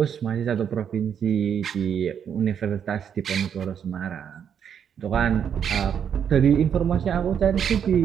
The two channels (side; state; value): left; quieter; 8.1 dB